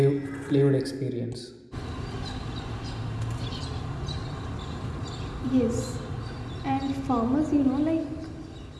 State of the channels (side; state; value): both; identical; correlation 1.00